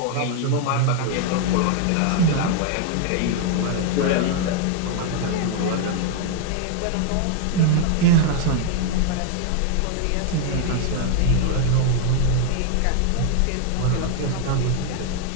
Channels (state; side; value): different; both; correlation 0.00